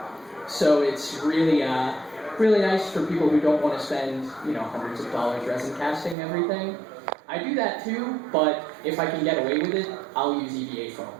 so it's really really nice for people who don't want to spend, hundreds of dollars resin casting everything. I do that too, but if I can get away with it, I'll use EVA foam.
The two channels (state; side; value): drops out; left; at 6.2 s